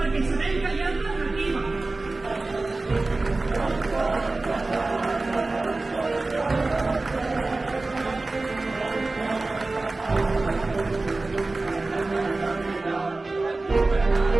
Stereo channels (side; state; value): left; quieter; 3.3 dB